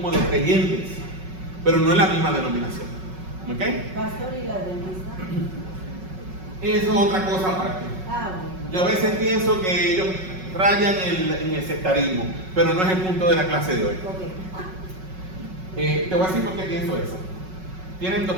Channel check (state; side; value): late; left; 5.4 ms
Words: de creyentes, pero no es la misma denominación. ¿Ok? Pastor, ¿y la dentista? Eso es otra cosa aparte. Bueno. Yo a veces pienso que ellos rayan en el sectarismo, pero no es el punto de la clase de hoy. Te voy a decir por qué pienso eso. Tienen